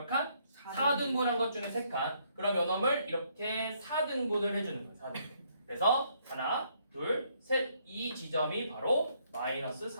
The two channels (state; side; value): inverted; both; correlation -0.70